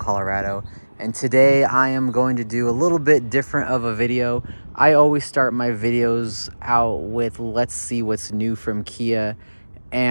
And today I am going to do a little bit different of a video. I always start my videos out with let's see what's new from Kia.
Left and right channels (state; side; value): inverted; both; correlation -1.00